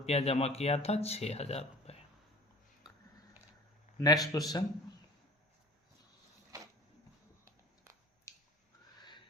जमा किया था, 6,000 रुपये। Next question.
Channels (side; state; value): both; normal; correlation 0.46